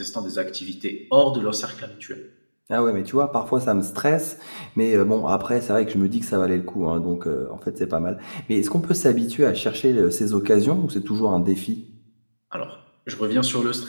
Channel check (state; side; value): inverted; both; correlation -1.00